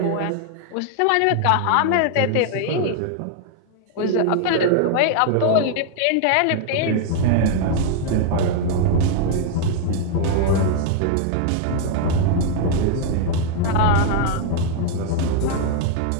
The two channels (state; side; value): different; both; correlation 0.00